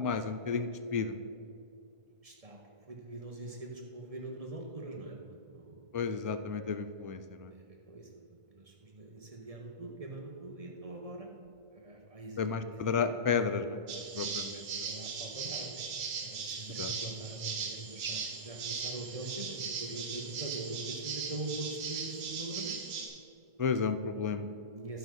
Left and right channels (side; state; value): left; late; 1.5 ms